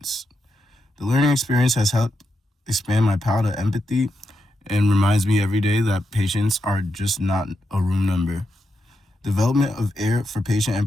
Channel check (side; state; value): both; normal; correlation 0.85